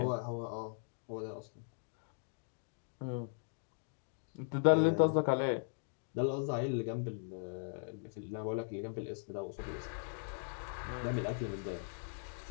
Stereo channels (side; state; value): right; silent; digital silence